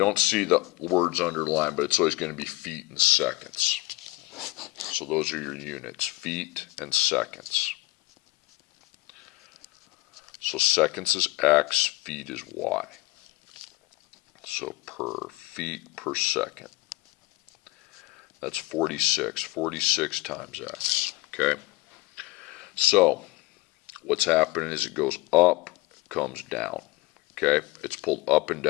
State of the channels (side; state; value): right; quieter; 20.1 dB